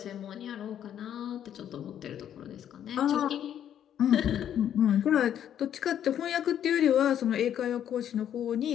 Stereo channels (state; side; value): quieter; right; 10.0 dB